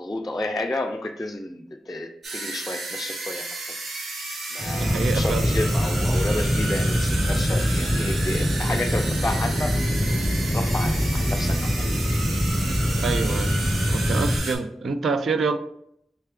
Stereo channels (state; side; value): normal; both; correlation 0.90